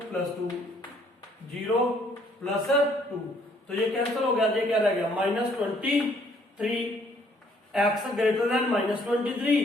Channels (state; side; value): normal; both; correlation 0.64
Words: + 2 0 plus 2, तो ये कैंसिल हो गया, ये क्या रह गया, -23 x greater than